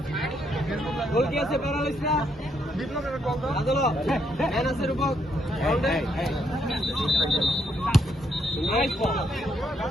গোল কি আছে? প্যারালাইজ না? বিপ্লবের গোল দাও। আদলো ম্যান আছে রূপক। গোল দে। Nice ball.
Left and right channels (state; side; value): normal; both; correlation 0.75